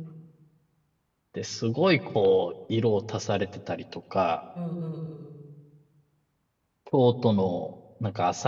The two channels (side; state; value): both; identical; correlation 1.00